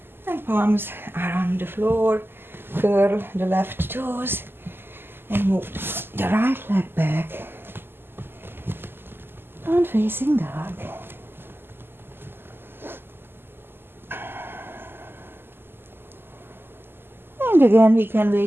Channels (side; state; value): left; late; 0.10 ms